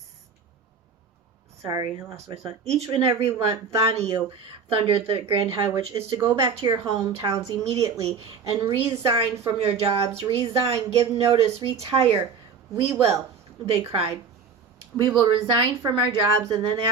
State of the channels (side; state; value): left; quieter; 5.7 dB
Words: Sorry, I lost my thought. Each and every one of you, thundered the Grand High Witch, is to go back to your hometowns immediately and resign from your jobs. Resign, give notice, retire. We will, they cried. We will resign from our jobs, and then